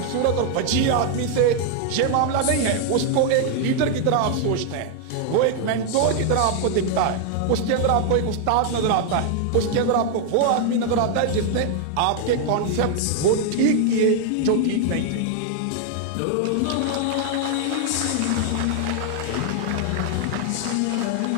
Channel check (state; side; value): different; both; correlation 0.00